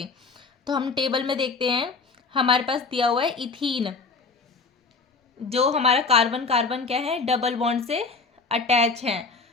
तो हम टेबल में देखते हैं, हमारे पास दिया हुआ है इथीन, जो हमारा कार्बन कार्बन क्या है, डबल बॉन्ड से अटैच है।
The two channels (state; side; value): quieter; right; 4.4 dB